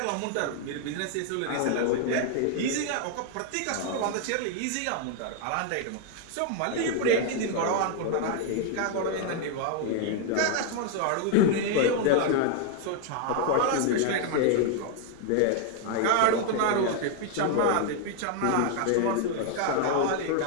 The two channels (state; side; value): different; both; correlation 0.00